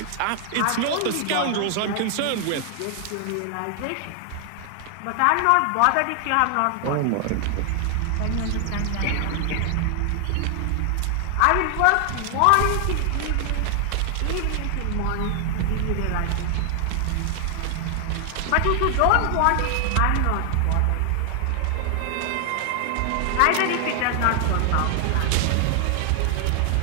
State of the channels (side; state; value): both; different; correlation 0.00